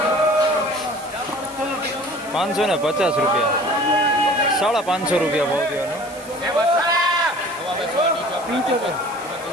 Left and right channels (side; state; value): right; noise; hiss, 19 dB below the sound